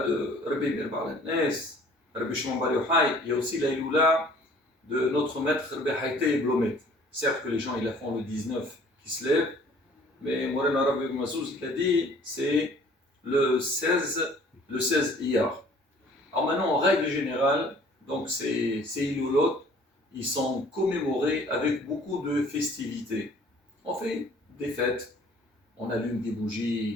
de Rabbi Meir Baal HaNes, Rabbi Shimon Bar Yochai, il y a aussi la Iloula de notre maître Rabbi Haïté Blomet. Certes que les gens ils la font le 19 qui se lève, mais Morena Rabbi Mazouz il a dit c'est le 16 Iyar. Alors maintenant, en règle générale, donc ces Ilolot, ils sont commémorés avec beaucoup de festivités. On fait des fêtes, on allume des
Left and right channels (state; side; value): normal; both; correlation 0.54